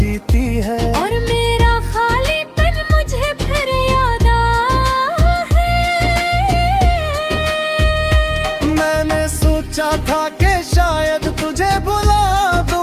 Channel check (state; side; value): identical; both; correlation 1.00